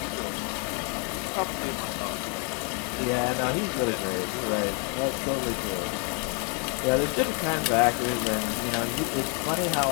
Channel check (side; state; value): right; quieter; 36.9 dB